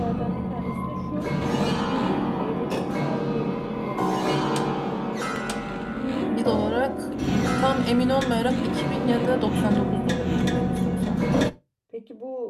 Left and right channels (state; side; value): identical; both; correlation 1.00